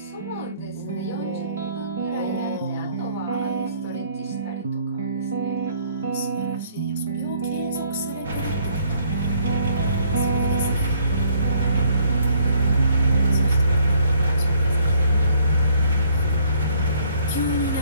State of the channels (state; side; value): inverted; both; correlation -0.64